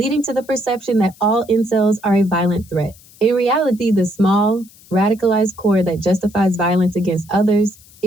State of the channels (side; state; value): left; noise; hiss, 25 dB below the sound